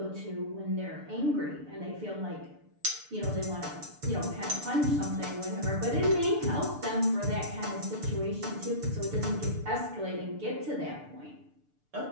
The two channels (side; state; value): left; late; 6.8 ms